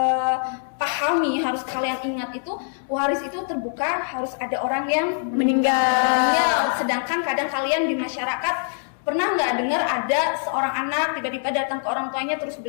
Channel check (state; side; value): silent; right; 62 dB below the other